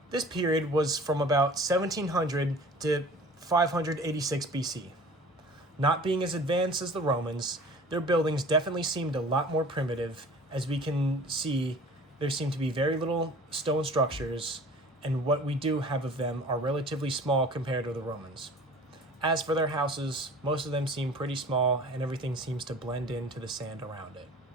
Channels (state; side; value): normal; both; correlation 0.44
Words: This period was from about 1700 to 586 BC. Not being as advanced as the Romans, their buildings definitely seemed a lot more primitive. As we can see, there seem to be very little stone structures, and what we do have of them are relatively small compared to the Romans. As for their houses, most of them seem pretty small, and everything seems to blend into the sand around it.